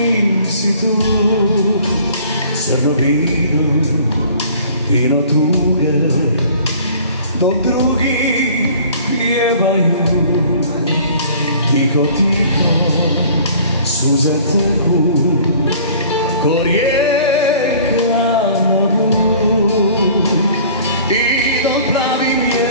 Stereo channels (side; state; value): both; inverted; correlation -0.51